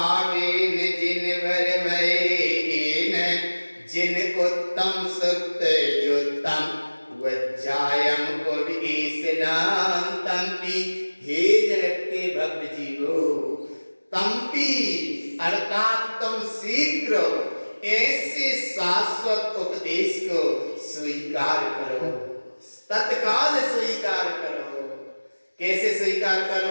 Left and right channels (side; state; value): both; inverted; correlation -1.00